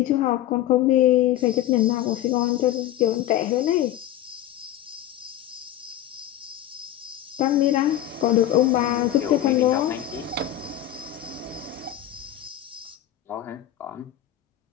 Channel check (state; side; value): quieter; right; 12.6 dB